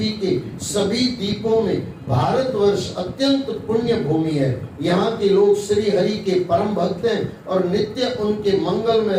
के सभी द्वीपों में भारतवर्ष अत्यंत पुण्य भूमि है। यहाँ के लोग श्री हरि के परम भक्त हैं और नित्य उनके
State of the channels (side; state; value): both; identical; correlation 1.00